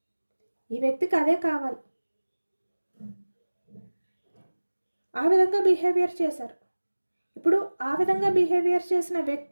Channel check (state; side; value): inverted; both; correlation -1.00